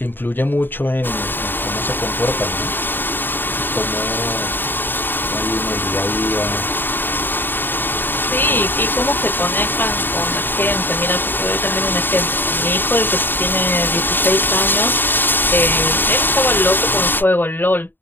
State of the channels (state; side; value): late; right; 0.094 ms